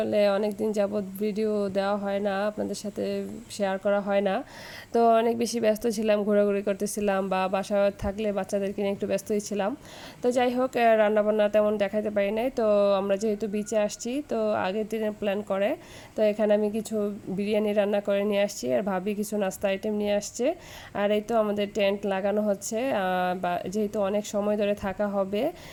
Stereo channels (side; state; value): both; identical; correlation 1.00